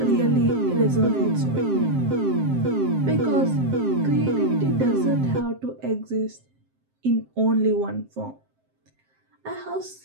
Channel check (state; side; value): late; left; 7.6 ms